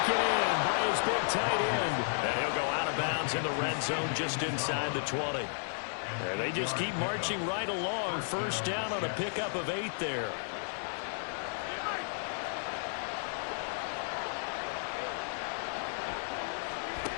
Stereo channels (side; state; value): right; silent; 56 dB below the other